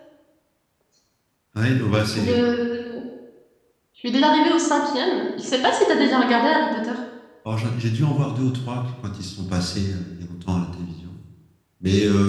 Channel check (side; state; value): both; identical; correlation 1.00